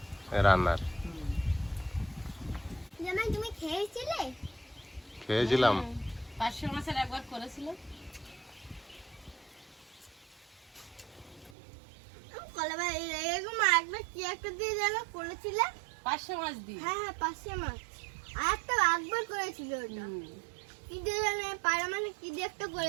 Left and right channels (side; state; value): left; drops out; at 11.6 s